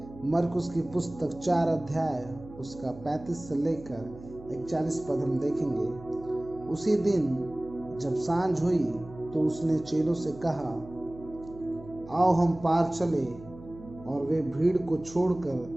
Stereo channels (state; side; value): noise; right; hum, 18 dB below the sound